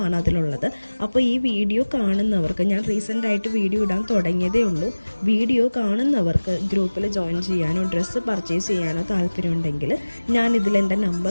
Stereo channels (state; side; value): inverted; both; correlation -1.00